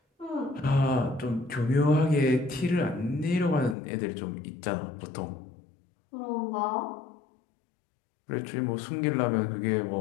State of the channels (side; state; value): right; drops out; at 3.8 s